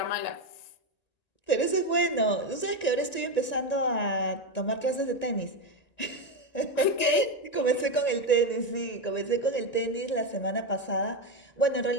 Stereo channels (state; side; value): late; right; 1.9 ms